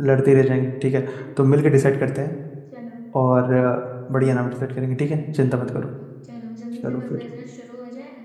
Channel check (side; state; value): both; identical; correlation 1.00